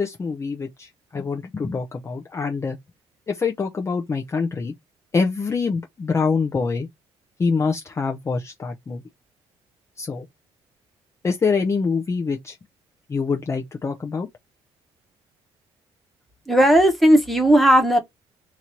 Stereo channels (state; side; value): normal; both; correlation 0.83